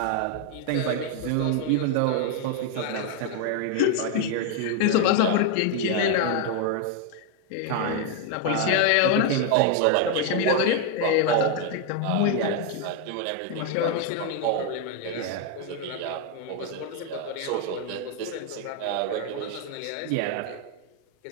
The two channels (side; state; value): both; different; correlation 0.01